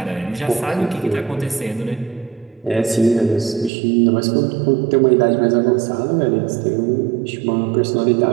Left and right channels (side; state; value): left; drops out; at 3.7 s